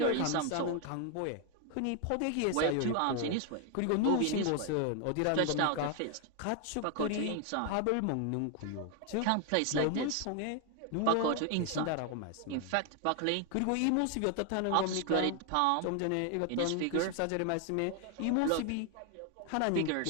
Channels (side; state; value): both; different; correlation 0.00